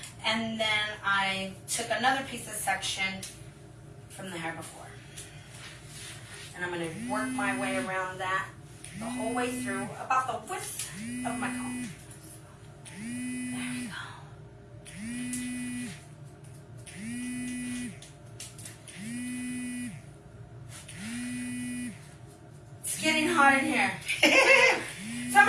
and then I took another piece of section from the hair before. And I'm going to work my way around that the whole way through, about the width of my comb. There we go. It's getting hot in here. So I'm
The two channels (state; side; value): identical; both; correlation 1.00